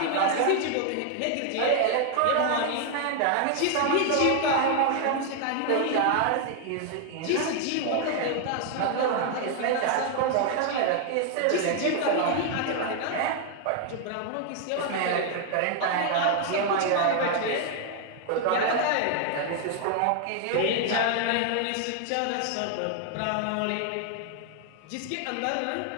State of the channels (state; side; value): different; both; correlation 0.00